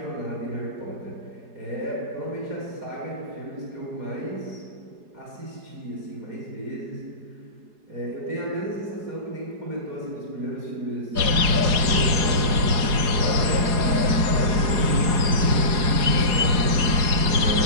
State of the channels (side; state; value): left; late; 4.8 ms